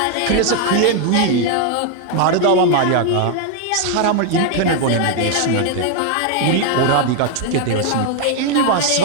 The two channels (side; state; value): both; different; correlation 0.00